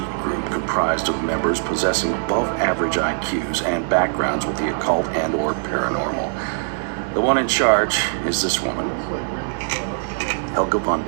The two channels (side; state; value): left; silent; digital silence